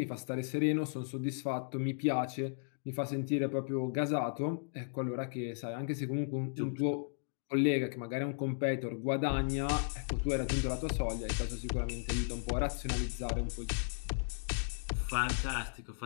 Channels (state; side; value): silent; right; digital silence